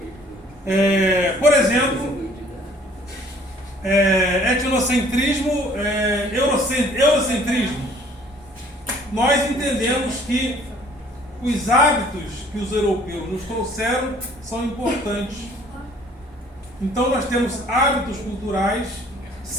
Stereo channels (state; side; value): normal; both; correlation 0.56